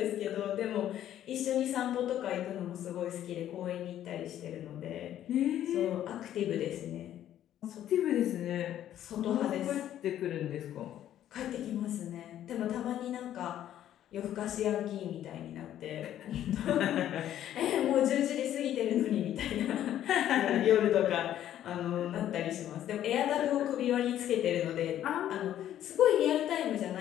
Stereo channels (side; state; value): right; quieter; 11.5 dB